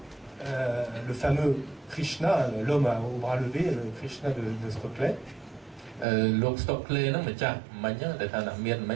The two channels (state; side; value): drops out; left; at 6.1 s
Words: le fameux Krishna, l'homme au bras levé, le Krishna de Stoclet.លោក Stockley ហ្នឹងម្ចាស់មិញដែលថាអ្នកមានមិ